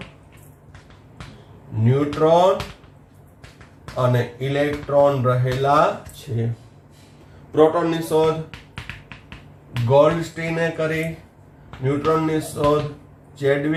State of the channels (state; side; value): identical; both; correlation 1.00